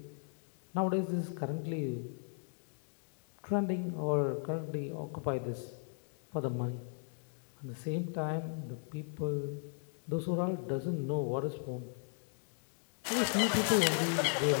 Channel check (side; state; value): right; silent; digital silence